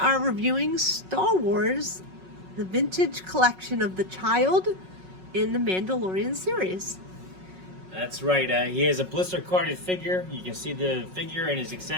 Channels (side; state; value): left; late; 5.4 ms